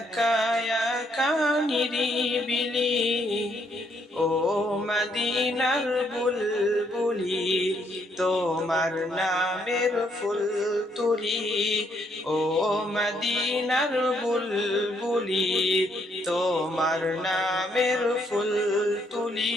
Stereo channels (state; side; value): normal; both; correlation 0.72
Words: একা নিরিবিলি। ও মদিনার বুলবুলি, তোমার নামের ফুল তুলি। ও মদিনার বুলবুলি, তোমার নামের ফুল